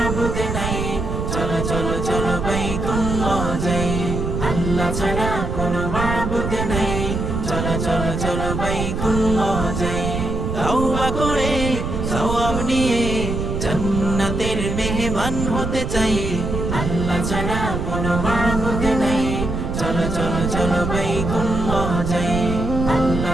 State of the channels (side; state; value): right; noise; rumble, 3 dB below the sound